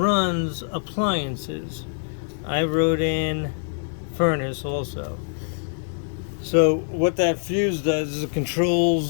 appliances. I wrote in furnace also. So what that fuse does is it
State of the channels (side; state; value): right; silent; digital silence